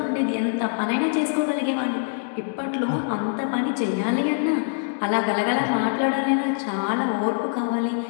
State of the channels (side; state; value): right; silent; digital silence